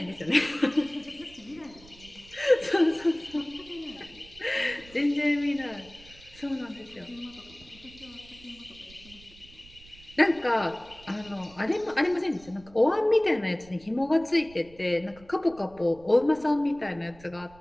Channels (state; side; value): noise; right; rumble, 23 dB below the sound